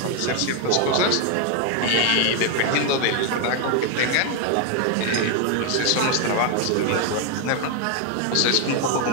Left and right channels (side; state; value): both; different; correlation 0.01